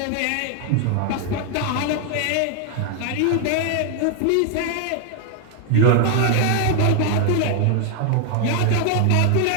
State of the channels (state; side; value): different; both; correlation 0.00